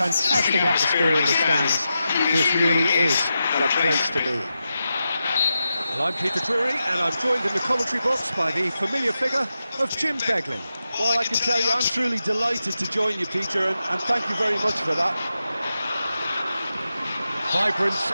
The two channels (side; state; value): both; inverted; correlation -0.90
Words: atmosphere in the stands. This really is a place to be. Well, I'm Peter Drury, and I'm joined in the commentary box by the familiar figure of Jim Beglin. Well, I can tell you, I'm truly delighted to join you, Peter, and thank you very much for that. Vibrant